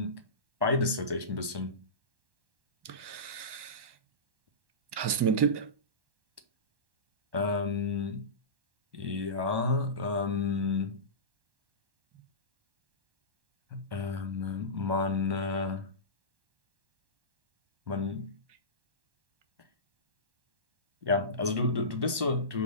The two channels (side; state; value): left; late; 1.1 ms